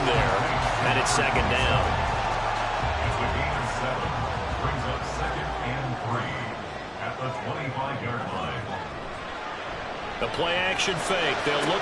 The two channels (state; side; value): identical; both; correlation 1.00